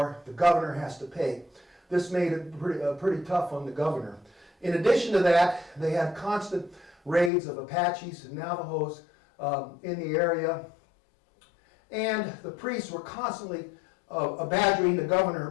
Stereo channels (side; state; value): right; drops out; at 7.3 s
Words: the governor has to pay. This made it pretty tough on the governor. In addition to that, they had constant raids of Apaches and Navajos in the area. And the priests were constantly badgering the governor